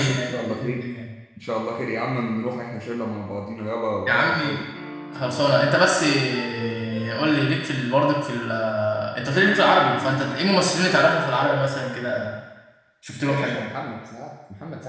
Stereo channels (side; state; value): both; identical; correlation 1.00